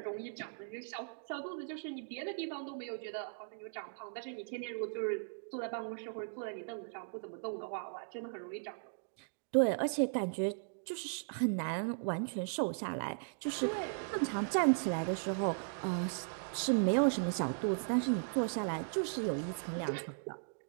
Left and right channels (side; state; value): left; silent; digital silence